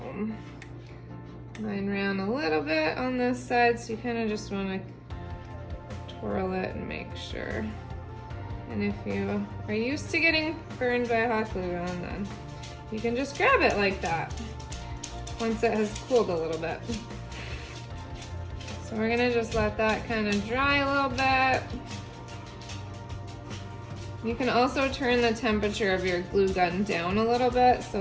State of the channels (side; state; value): both; identical; correlation 1.00